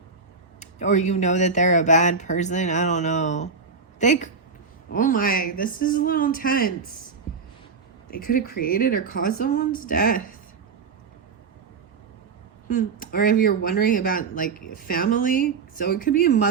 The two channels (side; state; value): left; quieter; 5.1 dB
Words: or you know that they're a bad person. I don't know. Oh my, this is a little intense. They could have created or caused someone's death. Or if you're wondering about like family, so it could be a